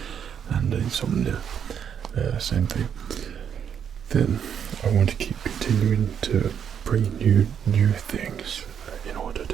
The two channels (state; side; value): quieter; left; 8.1 dB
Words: and insomnia, same thing, then I want to keep continuing to bring you new things in order